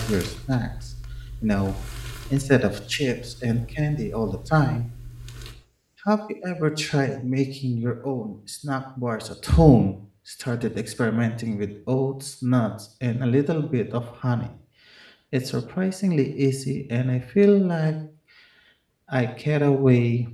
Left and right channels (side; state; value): both; identical; correlation 1.00